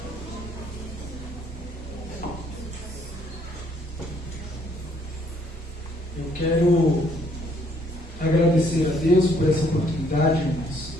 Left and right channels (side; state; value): both; normal; correlation 0.66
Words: Eu quero agradecer a Deus por essa oportunidade, irmãos.